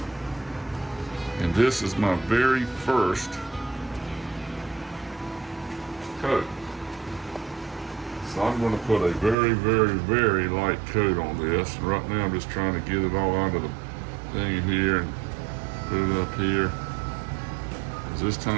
And this is my very first coat. So I'm going to put a very, very, very light coat on this. Right now I'm just trying to get it all out of the thing here and put it up here. Because this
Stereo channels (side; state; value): left; drops out; at 9.3 s